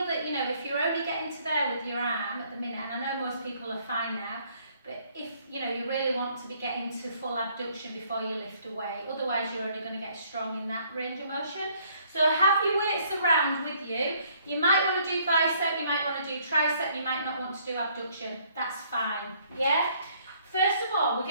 you know, if you're only getting to there with your arm at the minute, and I know most people are fine now, but if, you know, you really want to be getting to full abduction before you lift away, otherwise you're only going to get strong in that range of motion. So have your weights around with you. You might want to do bicep, you might want to do tricep, you might not want to do abduction. That's fine, yeah? First of all, we're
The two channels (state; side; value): inverted; both; correlation -0.64